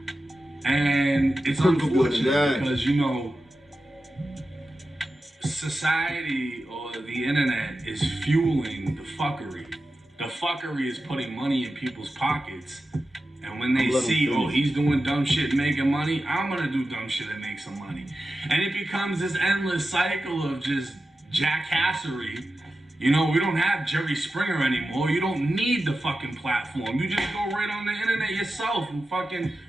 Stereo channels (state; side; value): normal; both; correlation 0.92